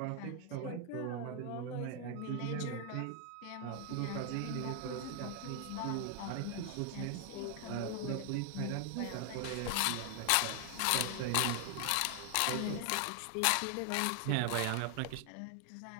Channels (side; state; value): both; different; correlation 0.00